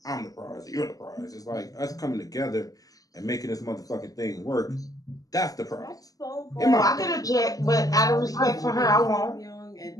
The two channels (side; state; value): right; late; 0.18 ms